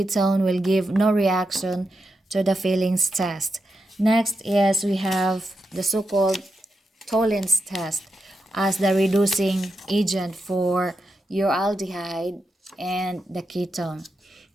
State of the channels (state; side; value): normal; both; correlation 0.87